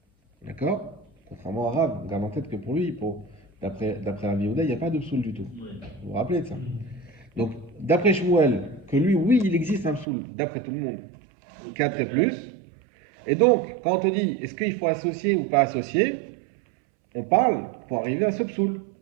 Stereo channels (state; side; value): drops out; left; at 10.1 s